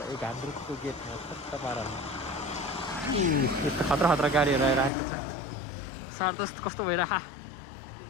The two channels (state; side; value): drops out; right; at 4.9 s